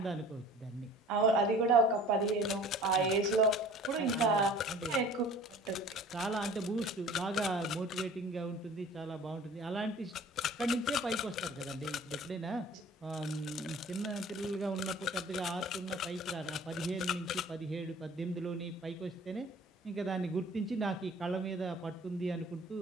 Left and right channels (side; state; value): both; normal; correlation 0.47